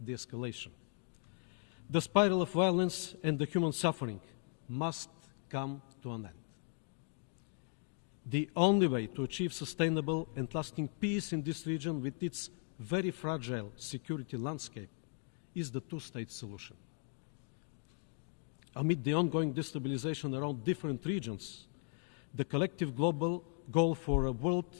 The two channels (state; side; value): silent; right; 53 dB below the other